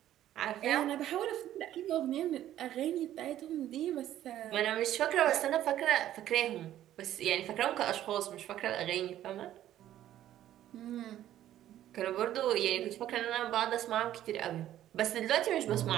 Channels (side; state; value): left; quieter; 12.5 dB